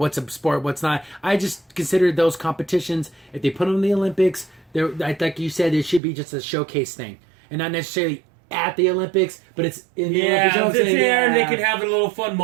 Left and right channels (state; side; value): drops out; left; at 6.0 s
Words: a sport, what's not. I just consider those competitions, if they put them in the Olympics, like you said, it should be just a showcase thing, and not necessarily at the Olympics, but it's in the Olympics. You know what I'm it's saying? there, and they Yeah. can have a little fun